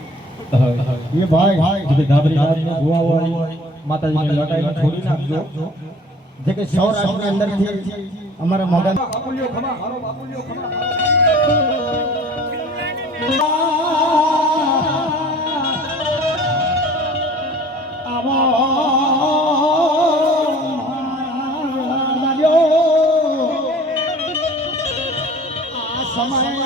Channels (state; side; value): normal; both; correlation 0.48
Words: એ ભાઈ જે ધાબરી નાચનો ગોવા હોય માતાજીની લટાઈને છોડી નાખજો. જે કે સૌરાષ્ટ્રની અંદરથી અમારા મોગા બાપુલિયો ખમા હારો બાપુલિયો ખમા